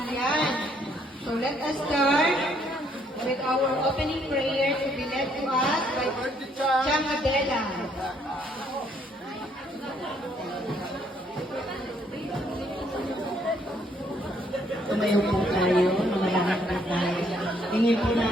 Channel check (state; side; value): normal; both; correlation 0.68